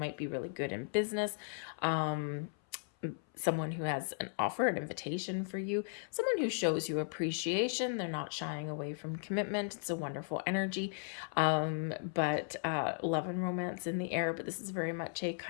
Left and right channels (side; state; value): right; silent; 54 dB below the other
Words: be really good in business, someone who has an offer, an invitation for you, someone who shows you appreciation. They're not shying away from commitment. It's a wonderful energy, but love and romance in the air. But this is very much a